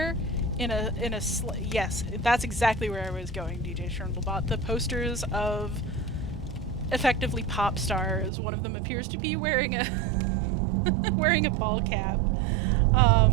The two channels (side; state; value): left; drops out; at 8.3 s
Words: yes, that's exactly where I was going, DJ Scherndelbot. The posters of effectively pop stars. One of them appears to be wearing a wearing a ball cap.